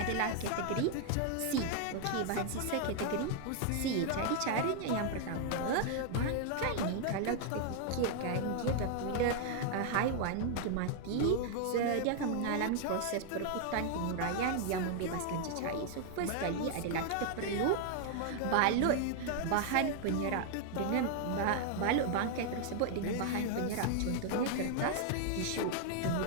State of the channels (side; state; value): both; different; correlation 0.00